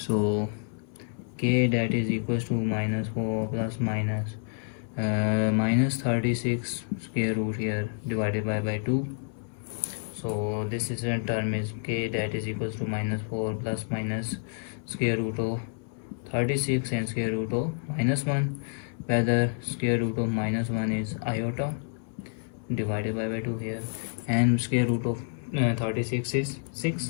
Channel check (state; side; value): silent; right; 58 dB below the other